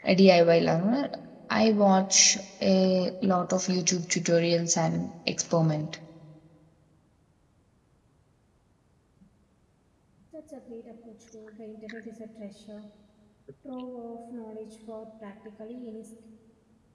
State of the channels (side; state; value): both; identical; correlation 1.00